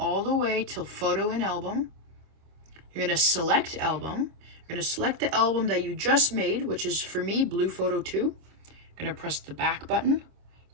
the way till photo in album. You're going to select album. You're going to select the album that you just made, which is for me, blue photo 2. You're going to press the back button.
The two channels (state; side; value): late; left; 26 ms